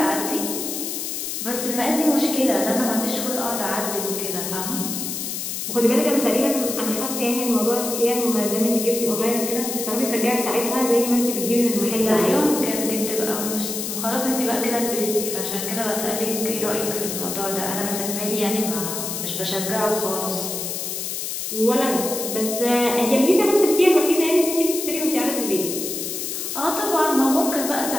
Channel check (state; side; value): noise; left; hiss, 4 dB below the sound